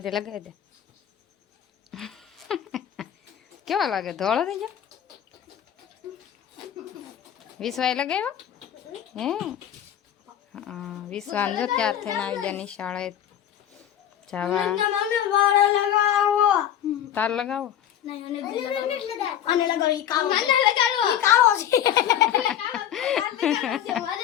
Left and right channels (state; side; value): quieter; right; 10.4 dB